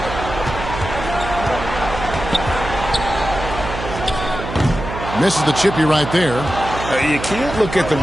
Misses the chippy right there. You can't look at the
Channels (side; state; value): right; noise; hum, 8 dB below the sound